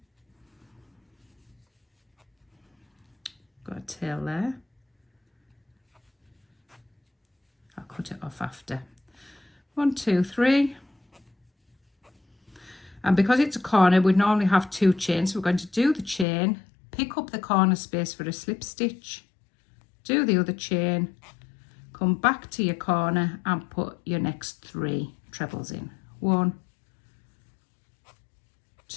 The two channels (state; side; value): drops out; right; at 16.2 s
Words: got a tail there. I'll cut it off after. 1, 2, 3. And because it's a corner, we normally have 2 chains. So we're going to do the chain, pick up the corner space for a slip stitch, do the other chain, come back to your corner and put your next 3 trebles in. 1,